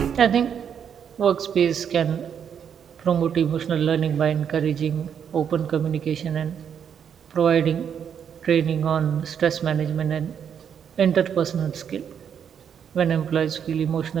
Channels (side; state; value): left; quieter; 8.0 dB